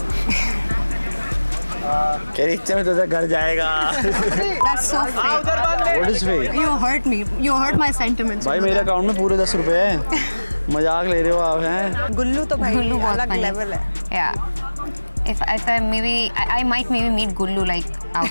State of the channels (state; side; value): inverted; both; correlation -1.00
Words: कह रही इतने में तो घर जाएगा। That's so fake. What is fake? You hurt me. You hurt my sentiments. भाई मेरे अकाउंट में पूरे 10 रुपए हैं। मजाक ले रहे हो आप हैं? गुल्लू तो भाई Gullu बहुत अलग funny. लेवल है। Yeah. If I maybe I might maybe meet Gullu like